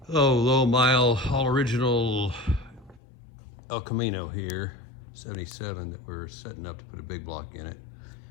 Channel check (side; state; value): right; drops out; at 3.0 s